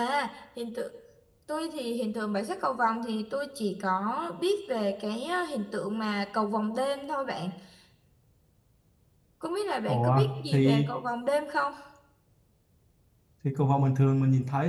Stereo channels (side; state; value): both; identical; correlation 1.00